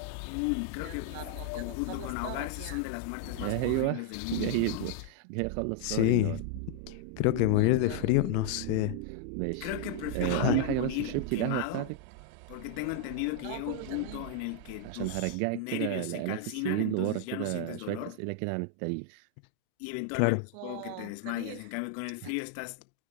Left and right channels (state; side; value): different; both; correlation 0.00